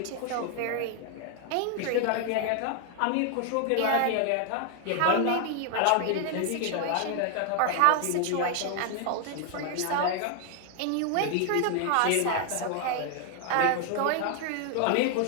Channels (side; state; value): both; different; correlation 0.00